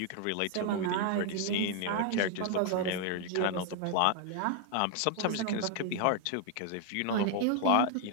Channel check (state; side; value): different; both; correlation 0.00